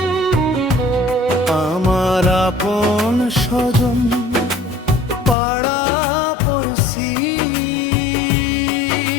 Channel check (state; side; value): drops out; right; at 5.4 s